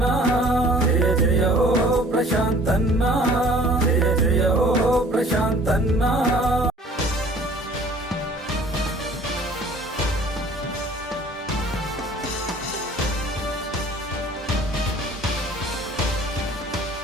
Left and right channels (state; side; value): normal; both; correlation 0.51